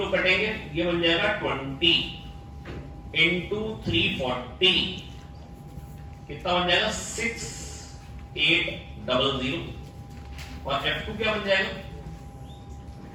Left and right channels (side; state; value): both; identical; correlation 1.00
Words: कटेंगे, ये बन जाएगा 20 into 340 कितना बन जाएगा? 6800। और f2 क्या बन जाएगा?